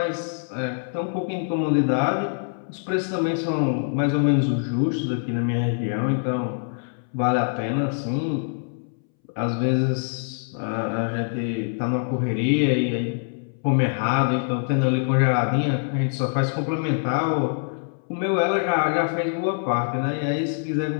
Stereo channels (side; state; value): right; silent; 62 dB below the other